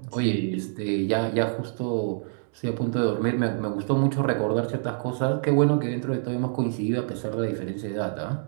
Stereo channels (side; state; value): left; silent; digital silence